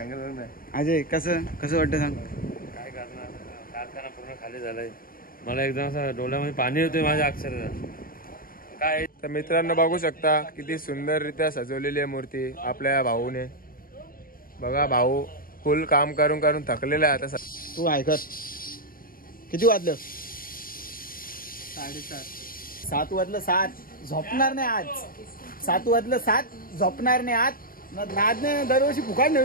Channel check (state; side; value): late; right; 0.42 ms